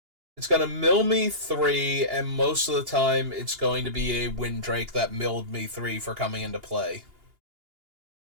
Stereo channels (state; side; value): late; left; 2.8 ms